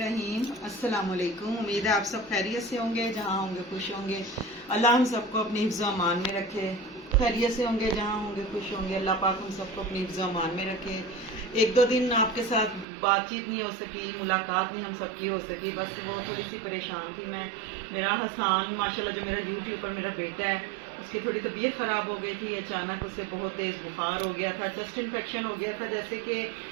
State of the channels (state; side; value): drops out; left; at 12.9 s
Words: अस्सलाम वालेकुम। उम्मीद है आप सब खैरियत से होंगे, जहाँ होंगे खुश होंगे। अल्लाह हम सबको अपनी हिफ्ज़ व अमान में रखे। खैरियत से होंगे, जहाँ होंगे खुश होंगे। अल्लाह पाक हम सबको अपनी हिफ्ज़ व अमान में रखे। एक दो दिन आपके साथ बातचीत नहीं हो सकी, मुलाकात नहीं हम सबकी हो सकी, बस वो थोड़ी सी परेशान थी मैं। मेरा हसान माशाल्लाह जो मेरा यूट्यूब पर मेरा बेटा है, उसकी थोड़ी तबीयत ख़राब हो गई थी। अचानक उससे बहुत तेज़ बुखार हो गया था, चेस्ट इन्फेक्शन हो गया था। जैसे कि